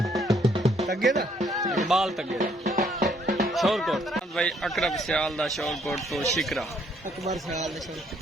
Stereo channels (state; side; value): normal; both; correlation 0.67